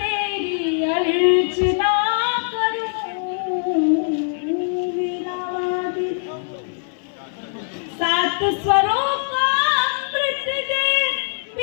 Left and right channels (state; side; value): silent; right; 58 dB below the other